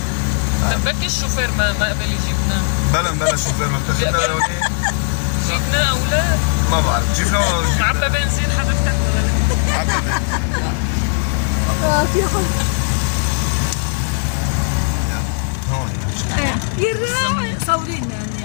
طب بركي الشوفير ما قبل يجيبنا. بلا شوفير ما بتجيبنا لهونيك. جبنا اولاد ما بعرف جبنا معبى بنزين حضرتك ولا لا؟ معبى بنزين. في حب. هون يا صورينا يعني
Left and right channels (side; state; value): right; silent; 63 dB below the other